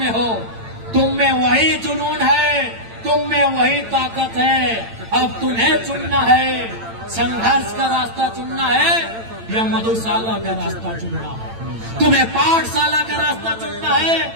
हो, तुम में वही जुनून है, तुम में वही ताकत है। अब तुम्हें चुनना है, संघर्ष का रास्ता चुनना है या मधुशाला का रास्ता चुनना है। तुम्हें पाठशाला का रास्ता चुनना है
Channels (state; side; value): late; left; 8.9 ms